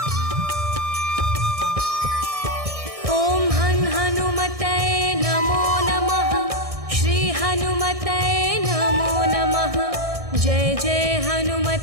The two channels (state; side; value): late; left; 1.6 ms